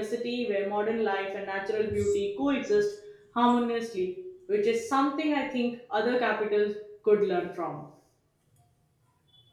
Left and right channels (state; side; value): identical; both; correlation 1.00